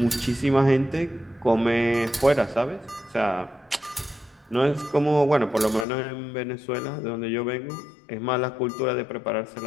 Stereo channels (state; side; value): drops out; right; at 5.9 s